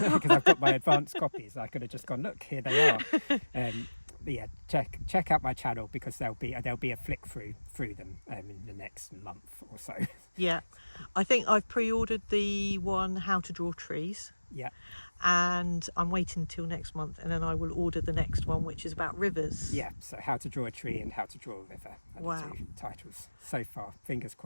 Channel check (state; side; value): inverted; both; correlation -1.00